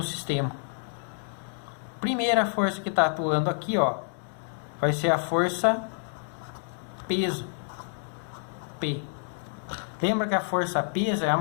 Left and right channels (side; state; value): right; silent; 59 dB below the other